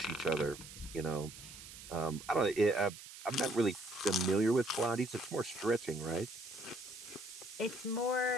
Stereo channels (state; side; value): noise; right; hiss, 14 dB below the sound